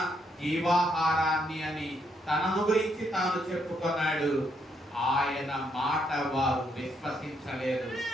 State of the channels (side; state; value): both; normal; correlation 0.75